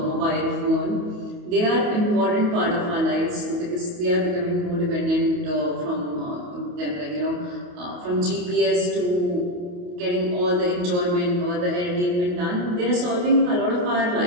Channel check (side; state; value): left; late; 28 ms